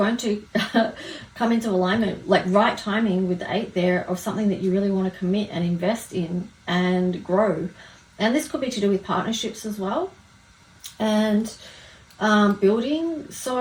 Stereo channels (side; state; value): both; identical; correlation 1.00